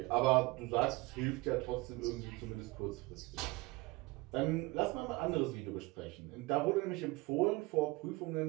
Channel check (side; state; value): left; quieter; 23.1 dB